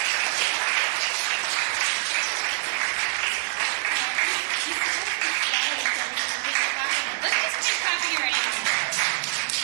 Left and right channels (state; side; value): silent; left; 60 dB below the other